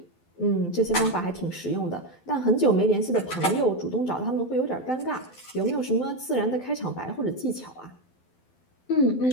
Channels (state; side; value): late; right; 12 ms